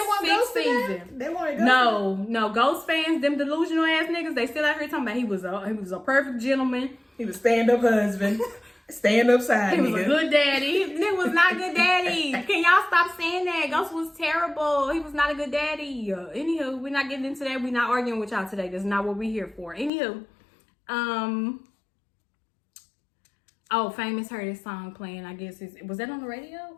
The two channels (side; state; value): right; drops out; at 19.9 s